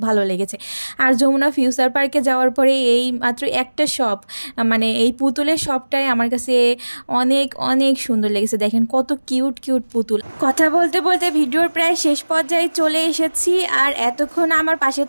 ভালো লেগেছে। আর যমুনা ফিউচার পার্কে যাওয়ার পরে এই মাত্র একটা শপ, এই পুতুলের শপটাই আমার কাছে অনেক অনেক সুন্দর লেগেছে। দেখেন কত কিউট কিউট পুতুল। কথা বলতে বলতে ভিডিওর প্রায় শেষ পর্যায়ে চলে এসেছি। আর এতক্ষণ আমার পাশে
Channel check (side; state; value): both; inverted; correlation -1.00